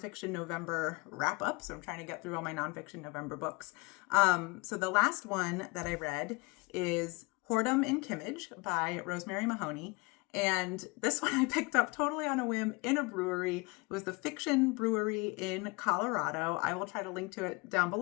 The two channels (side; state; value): right; quieter; 27.6 dB